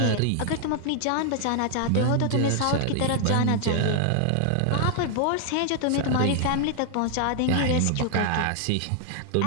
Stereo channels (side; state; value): both; different; correlation 0.00